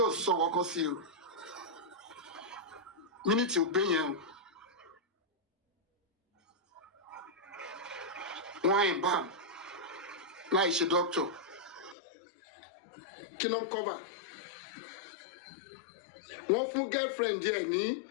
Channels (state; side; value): drops out; right; at 12.0 s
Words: sọ kọ́kọ́ sí o mínítì ò gbé yẹn o wọ́n embalm láì ṣe doctor kí ló ń cover wọ́n fún girlfriend yẹn ní